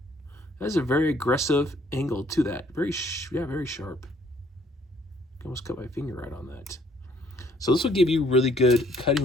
That is a very aggressive angle to that. Very sharp. I almost cut my finger right on that. So this will give you really good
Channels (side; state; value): both; normal; correlation 0.64